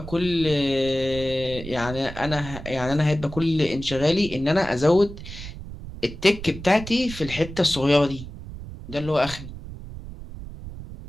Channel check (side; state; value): right; noise; rumble, 12 dB below the sound